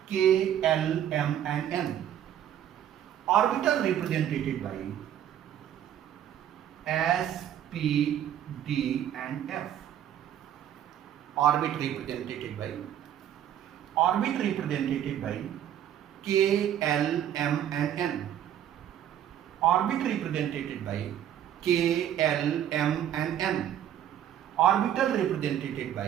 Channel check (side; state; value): left; quieter; 10.6 dB